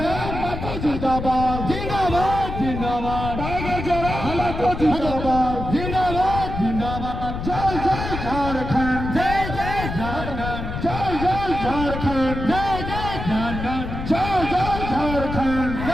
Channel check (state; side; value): noise; left; rumble, 6 dB below the sound